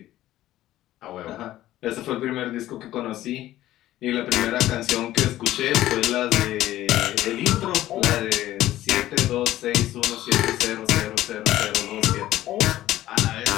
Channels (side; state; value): right; quieter; 14.5 dB